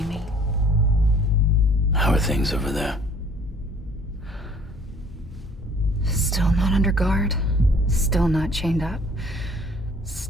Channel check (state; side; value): normal; both; correlation 0.56